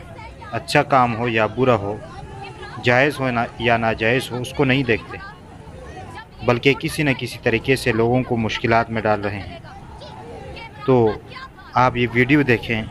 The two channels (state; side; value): identical; both; correlation 1.00